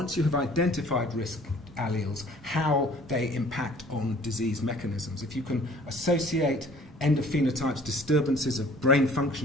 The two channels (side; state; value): both; normal; correlation 0.53